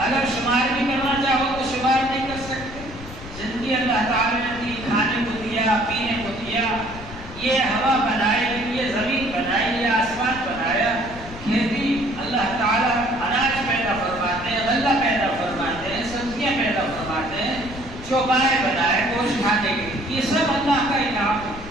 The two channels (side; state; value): left; noise; rumble, 14 dB below the sound